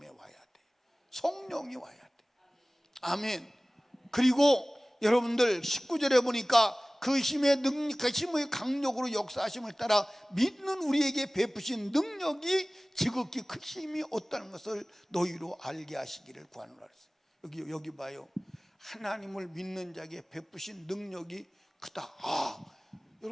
와야 돼. 성령이 와야 돼. 아멘. 그리고 여러분들 19절에 보니까 그 힘의 능력, 그 힘의 강력으로 역사하심을 따라 믿는 우리에게 베푸신 능력이 지극히 큰 힘이 없다는 것을 너희로 알게 하시기를 구하노라 했어요. 여기 봐요. 하나님을 믿는 자에게 베푸신 능력이 크다.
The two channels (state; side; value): normal; both; correlation 0.98